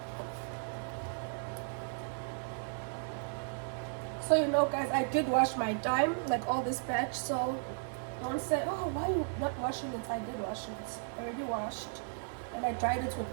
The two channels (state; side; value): silent; left; digital silence